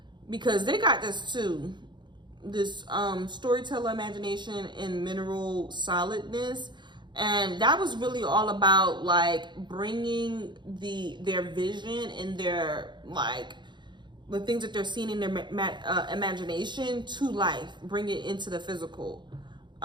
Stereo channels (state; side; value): late; left; 0.22 ms